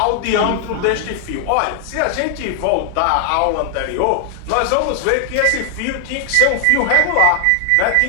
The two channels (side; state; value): both; different; correlation 0.00